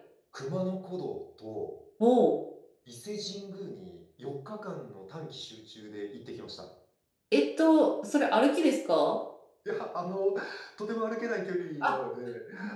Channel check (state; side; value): identical; both; correlation 1.00